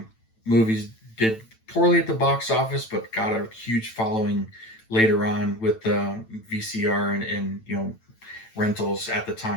movies did poorly at the box office, but got a huge following later on with the VCR and rentals at the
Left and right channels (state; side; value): late; right; 9.0 ms